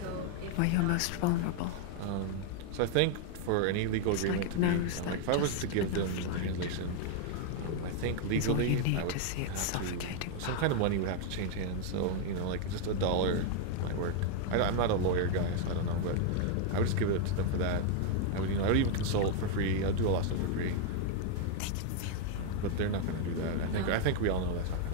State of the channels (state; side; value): different; both; correlation 0.00